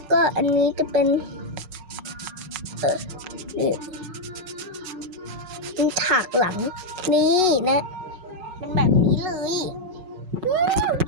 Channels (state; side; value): late; left; 5.4 ms